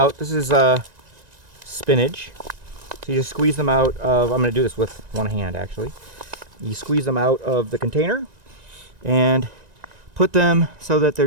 This is spinach, so you just squeeze them out of. I'm going to do this with one hand actually. You squeeze them out of the container and put them so that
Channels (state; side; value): late; left; 1.9 ms